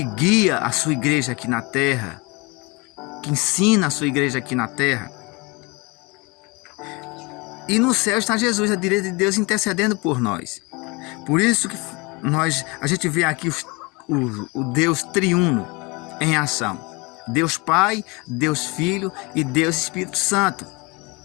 guia a sua igreja aqui na terra, que ensina a sua igreja aqui na terra. E no céu está Jesus, à direita de Deus, intercedendo por nós. Por isso que a gente vê aqui o Deus triuno em ação. Deus Pai, Deus Filho e Deus Espírito Santo.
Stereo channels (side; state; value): right; quieter; 27.1 dB